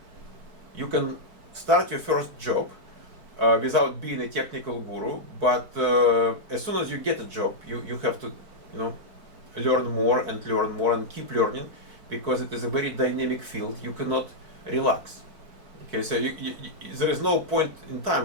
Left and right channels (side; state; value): left; late; 4.6 ms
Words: You can start your first job without being a technical guru, but as soon as you get a job, you have to learn more and keep learning, because it is a very dynamic field. You cannot relax. Okay, so there is no point in time